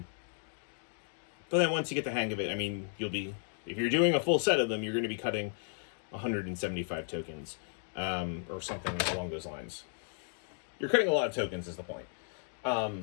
then once you get the hang of it, I mean, you'll be, if you're doing a full set of them, you're going to be cutting 175 tokens, or something along those lines. You're cutting a lot of tokens is the point. I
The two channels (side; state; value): right; silent; 55 dB below the other